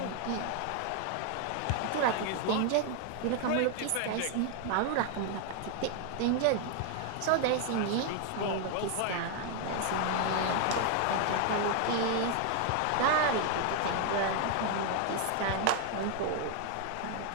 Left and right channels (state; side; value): different; both; correlation 0.00